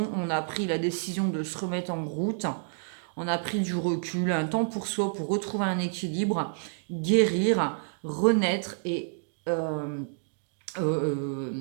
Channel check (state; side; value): silent; left; digital silence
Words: On a pris la décision de se remettre en route. On a pris du recul, un temps pour soi, pour retrouver un équilibre, guérir, renaître et se